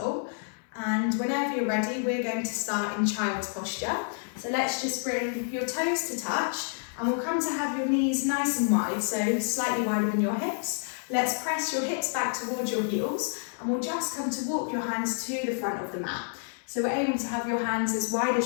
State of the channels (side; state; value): right; silent; 59 dB below the other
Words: and whenever you're ready we're going to start in child's posture. So let's just bring your toes to touch and we'll come to have your knees nice and wide, so slightly wider than your hips. Let's press your hips back towards your heels and we'll just come to walk your hands to the front of the mat. So we're aiming to have your hands as wide